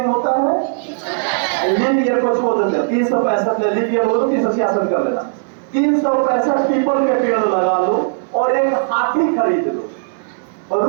होता है? लीप ईयर को छोड़ देते हैं, 365 में लीप ईयर हो तो 366 कर लेना। 365 पीपल के पेड़ लगा लो और एक हाथी खरीद लो, और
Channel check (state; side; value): silent; left; 62 dB below the other